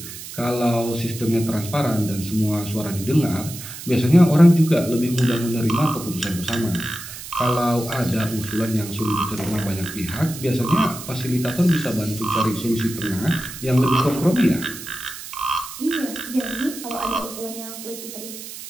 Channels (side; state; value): right; noise; hiss, 12 dB below the sound